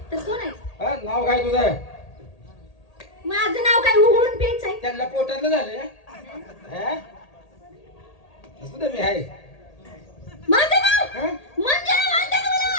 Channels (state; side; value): late; right; 1.8 ms